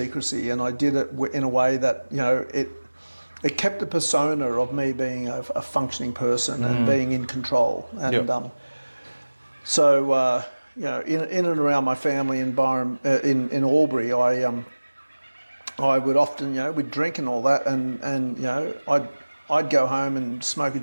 and I did it in a way that it kept the persona of me being a functioning person and being in control. And so in and around my family environment in Albury, I would often, we'd drink and all that, and I'd go home and smoke a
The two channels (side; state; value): both; inverted; correlation -1.00